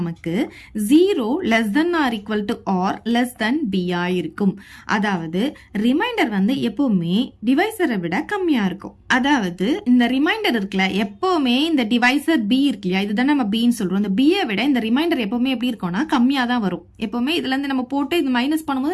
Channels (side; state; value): both; identical; correlation 1.00